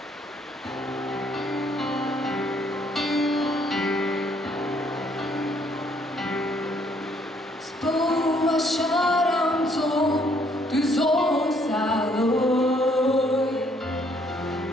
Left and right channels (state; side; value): normal; both; correlation 0.66